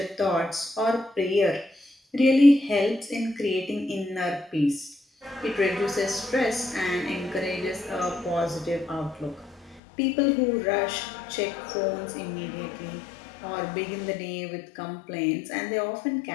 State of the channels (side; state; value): right; drops out; at 9.8 s